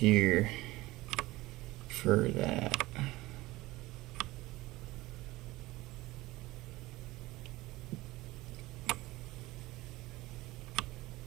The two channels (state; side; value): quieter; left; 19.2 dB